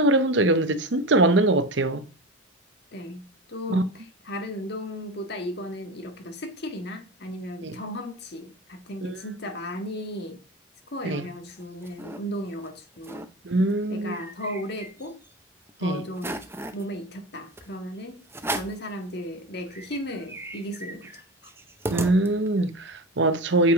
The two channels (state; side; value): normal; both; correlation 0.26